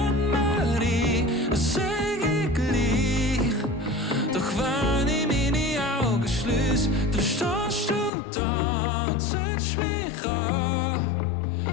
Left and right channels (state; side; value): drops out; right; at 8.1 s